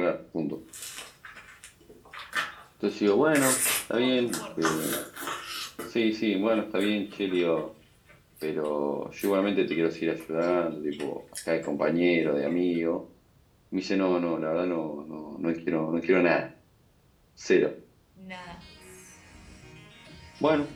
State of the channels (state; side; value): identical; both; correlation 1.00